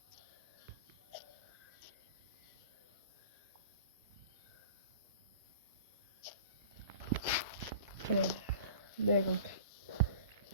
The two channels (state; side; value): inverted; both; correlation -0.41